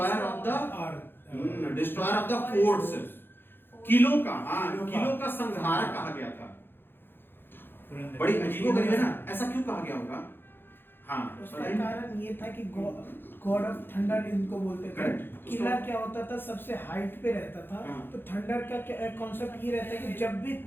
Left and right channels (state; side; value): late; right; 0.10 ms